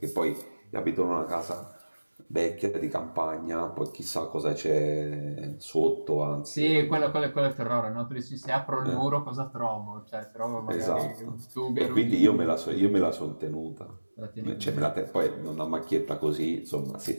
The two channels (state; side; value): inverted; both; correlation -1.00